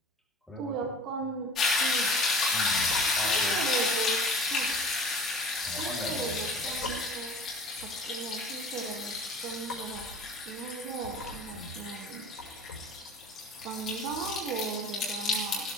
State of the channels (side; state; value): both; normal; correlation 0.42